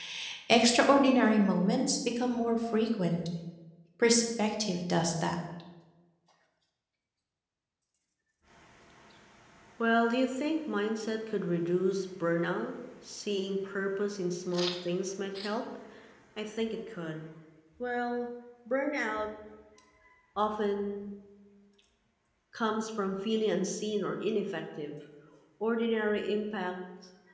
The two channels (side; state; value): both; identical; correlation 1.00